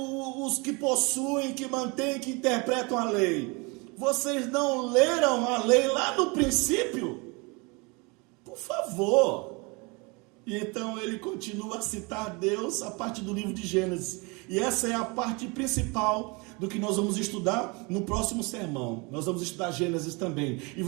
que possuem, que mantêm, que interpretam a lei, vocês não leram a lei lá no princípio? Por favor. E então ele continua a citar Deus a partir do livro de Gênesis. E essa é a parte principal do que nós vamos estudar no próximo sermão. Nós vamos estudar Gênesis também. E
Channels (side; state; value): left; quieter; 28.6 dB